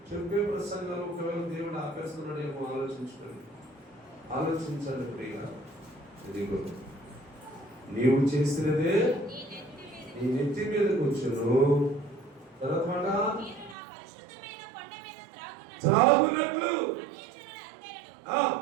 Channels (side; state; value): left; drops out; at 13.8 s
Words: చెప్పే ప్రసంగాలు ఒకవేళ దేవుడు ఆపేస్తున్నాడేమో ఆలోచించండి ప్రియుగా. ఇదిగో నీవు చేసినదే నీ నెత్తి మీదకి వచ్చును. తర్వాత త్రాగునట్లు